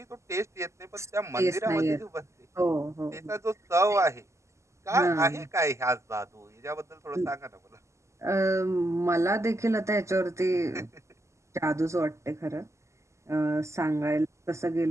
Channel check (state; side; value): late; left; 0.14 ms